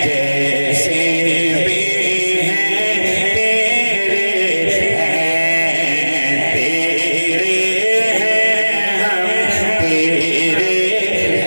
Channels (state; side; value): inverted; both; correlation -1.00